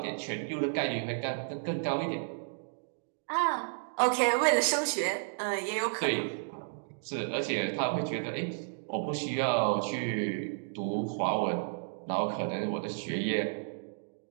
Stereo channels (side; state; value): left; silent; digital silence